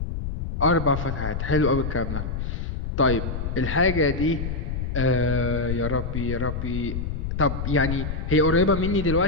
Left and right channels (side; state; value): left; noise; rumble, 4 dB below the sound